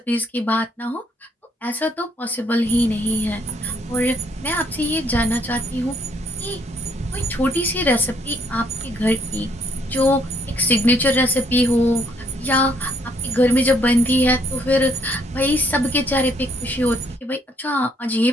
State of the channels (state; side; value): normal; both; correlation 0.66